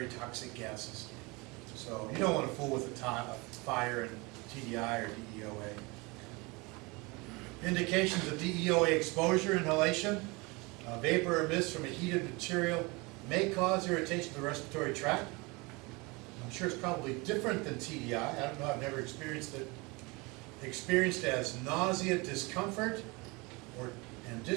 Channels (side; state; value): left; quieter; 26.2 dB